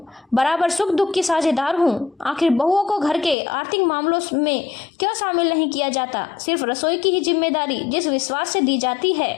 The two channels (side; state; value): right; drops out; at 3.4 s